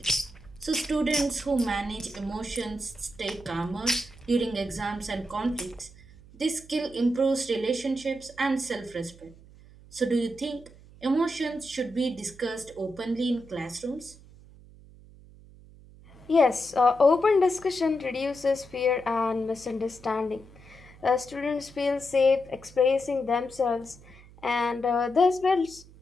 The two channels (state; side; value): noise; right; hum, 22 dB below the sound